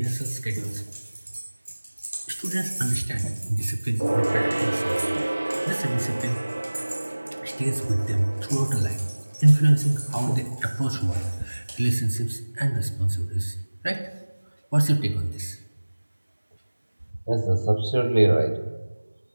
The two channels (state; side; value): inverted; both; correlation -1.00